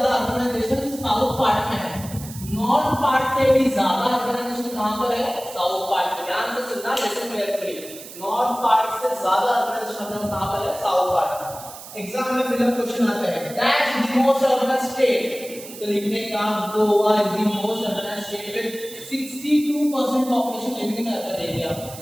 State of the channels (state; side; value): noise; right; hiss, 15 dB below the sound